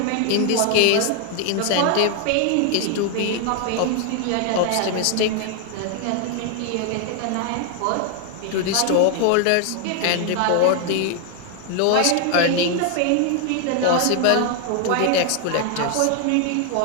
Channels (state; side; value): different; both; correlation 0.00